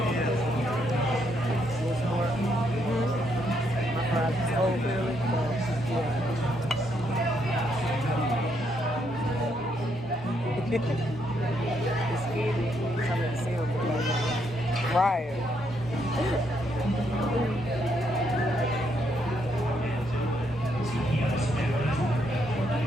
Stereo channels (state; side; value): normal; both; correlation 0.75